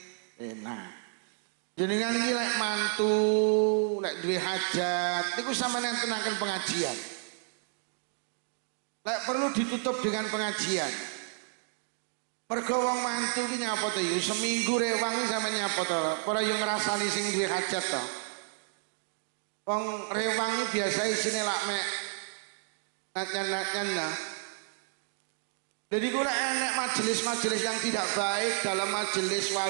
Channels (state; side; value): silent; left; digital silence